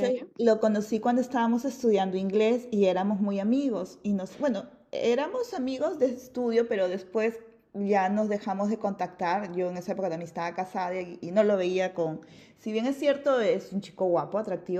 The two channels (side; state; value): both; identical; correlation 1.00